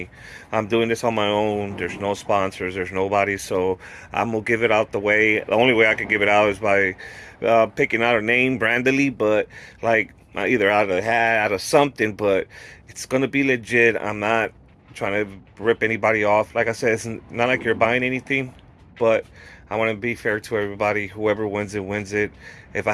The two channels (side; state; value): both; identical; correlation 1.00